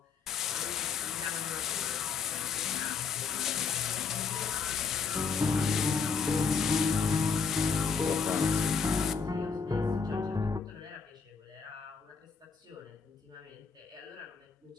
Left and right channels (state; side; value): quieter; right; 5.5 dB